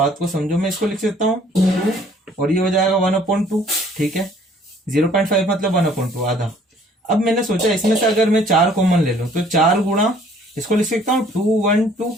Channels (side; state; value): both; normal; correlation 0.58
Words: को समझो, मैं इसको लिख सकता हूँ 2 और ये हो जाएगा 1/2, ठीक है। 0.5 मतलब 1/2 आधा। अब मैंने सोचा इसमें से अगर मैं 4 कॉमन ले लूं तो 4 गुणा इसको लिख सकता हूँ 212